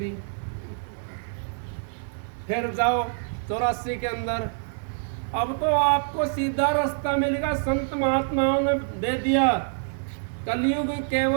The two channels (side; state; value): left; silent; digital silence